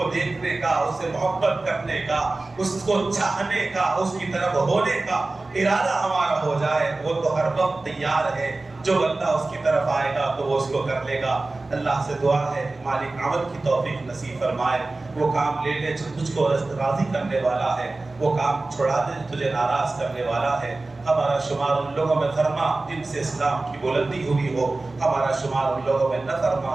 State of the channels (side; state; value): left; quieter; 3.2 dB